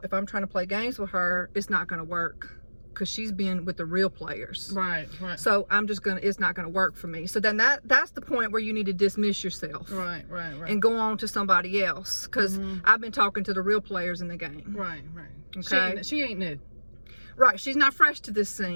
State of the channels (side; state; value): both; inverted; correlation -1.00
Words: if I'm trying to play games with her, it's not going to work because she's been with the real players. Right. So it's not going to work for me. So then that's the point where you need to dismiss yourself. Right. And go on to somebody else because I've been talking to the real players in the game. Right. Okay. She ain't new. Right, she's not fresh to this